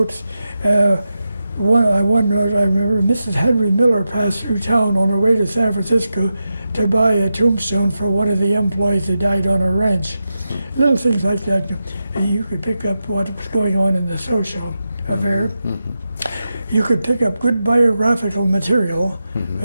One note I remember: Mrs. Henry Miller passed through town on her way to San Francisco to buy a tombstone for one of the employees that died on her ranch. Little things like that, and you could pick up what was going on in the social affair. You could pick up good biographical material.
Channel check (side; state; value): both; inverted; correlation -0.90